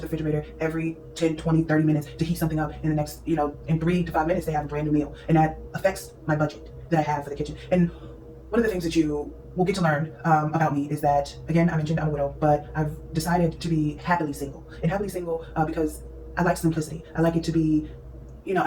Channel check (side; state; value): both; identical; correlation 1.00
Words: refrigerator every 10, 20, 30 minutes to heat something up. In the next, in 3 to 5 minutes, they have a brand new meal. And that affects my budget that I have for the kitchen. And one of the things that you will get to learn about me is that, again, I mentioned I'm a widow, but I've decided to be happily single. And happily single because I like simplicity. I like it to be I